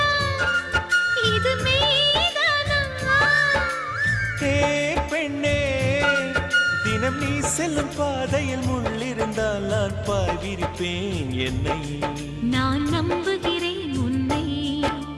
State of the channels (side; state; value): both; identical; correlation 1.00